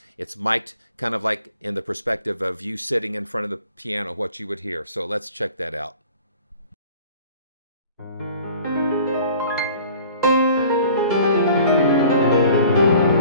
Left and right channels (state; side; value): inverted; both; correlation -0.49